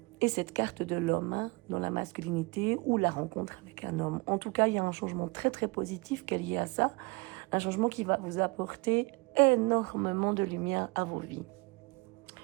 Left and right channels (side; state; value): left; quieter; 26.9 dB